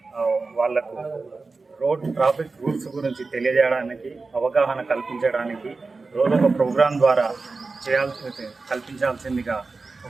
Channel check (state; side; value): quieter; left; 3.9 dB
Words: వాళ్లకు రోడ్ ట్రాఫిక్ రూల్స్ గురించి తెలియజేయడానికి, అవగాహన కల్పించడానికి రోజొక ప్రోగ్రాం ద్వారా కల్పించాల్సిందిగా